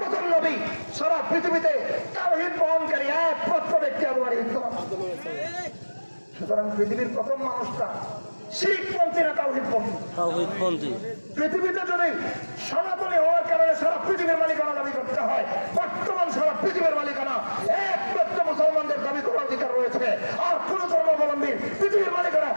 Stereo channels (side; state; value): both; inverted; correlation -1.00